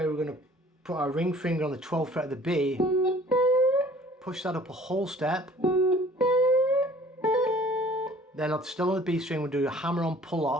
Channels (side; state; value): both; normal; correlation 0.51